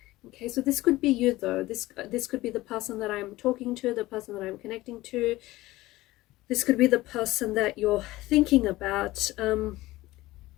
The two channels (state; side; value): quieter; right; 18.0 dB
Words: Okay, so this could be you though. This could be the person that I'm talking to, the person that I'm connecting to. This could be the person that you're thinking about.